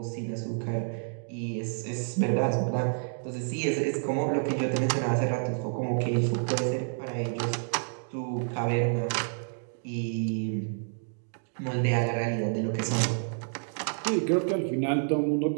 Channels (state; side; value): silent; left; digital silence